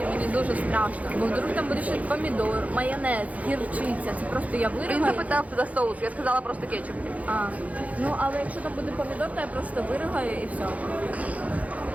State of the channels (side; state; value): left; late; 0.070 ms